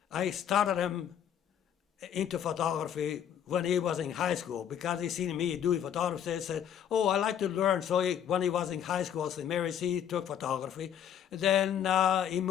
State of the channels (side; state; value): right; quieter; 9.3 dB